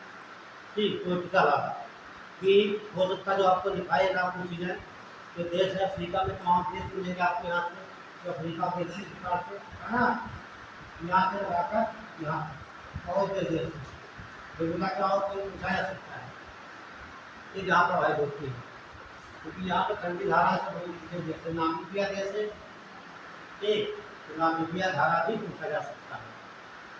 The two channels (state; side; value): identical; both; correlation 1.00